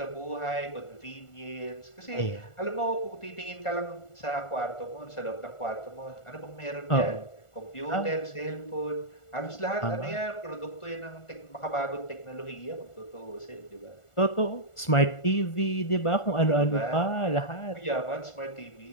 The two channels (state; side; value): late; right; 1.4 ms